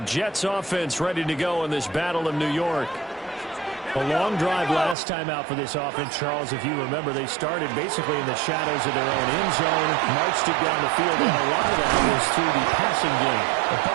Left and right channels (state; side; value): drops out; left; at 5.0 s